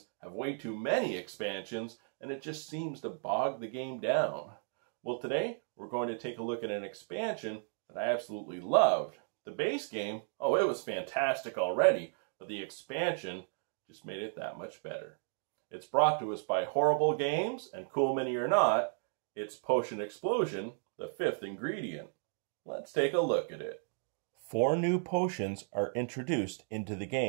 have way too many expansions, and it just seems to bog the game down. Well, today, we're going to take a look at an expansion that I absolutely loved. The base game, oh, it was fantastic already, but the expansion just made it that much better. It's brought to us by Horrible Games, and cool mini or not, it's Potion Explosion, the 5th ingredient. Let's take a look at it. 4 new potions are introduced into the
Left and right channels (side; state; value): left; silent; 55 dB below the other